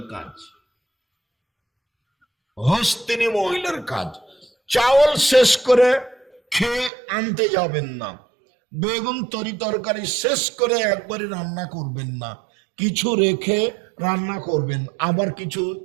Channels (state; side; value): drops out; left; at 6.9 s